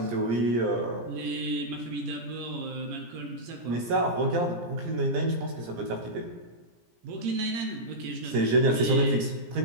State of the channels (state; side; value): late; left; 17 ms